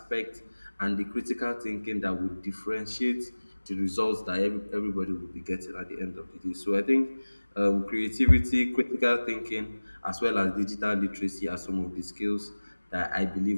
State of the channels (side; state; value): both; inverted; correlation -1.00